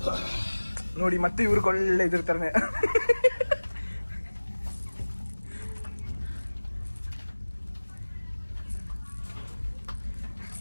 ನೋಡಿ, ಮತ್ತೆ ಇವ್ರಿಗೆ ಒಳ್ಳೆ ಇದಿರ್ತಾರೆ.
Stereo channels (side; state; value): both; inverted; correlation -1.00